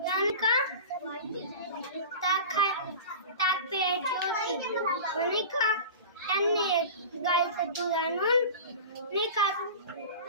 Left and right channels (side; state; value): both; inverted; correlation -0.33